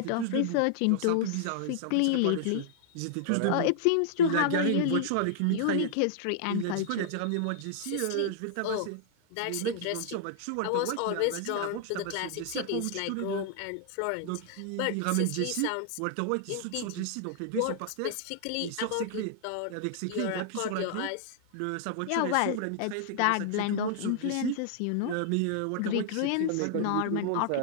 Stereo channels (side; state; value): both; different; correlation -0.01